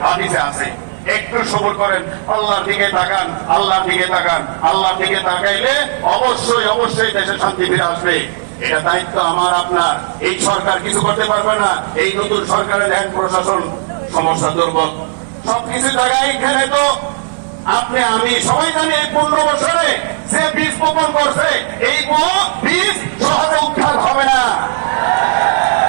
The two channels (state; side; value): silent; left; digital silence